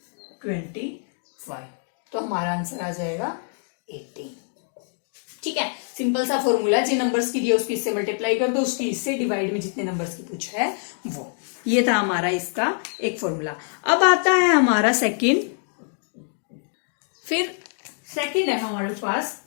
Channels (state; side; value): silent; right; 62 dB below the other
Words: तो हमारा आंसर आ जाएगा 80। ठीक है, सिंपल सा फॉर्मूला, जिन नंबर्स की दिए उसकी इससे मल्टीप्लाई कर दो, उसकी इससे डिवाइड में जितने नंबर्स की पूछा है वो। ये था हमारा इसका एक फॉर्मूला। अब आता है हमारा सेकंड। फिर सेकंड है हमारे पास,